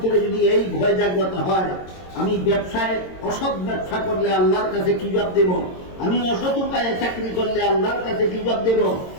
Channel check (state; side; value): late; right; 22 ms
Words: যদি এই ভয় জাগ্রত হয়, আমি ব্যবসায় অসৎ ব্যবসা করলে আল্লাহর কাছে কি জবাব দেব, আমি অসৎ উপায়ে চাকরি করলে আল্লাহর কাছে কি জবাব দেব,